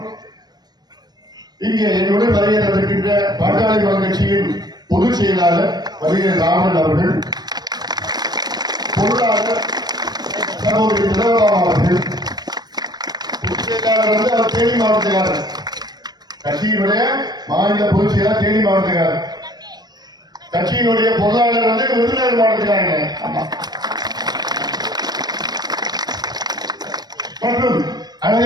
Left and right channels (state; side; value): late; left; 0.19 ms